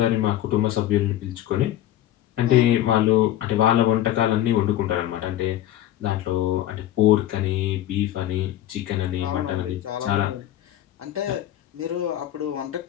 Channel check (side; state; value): right; quieter; 12.9 dB